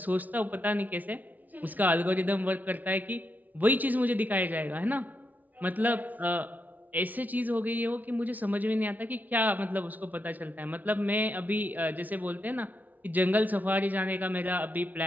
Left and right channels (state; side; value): late; left; 0.077 ms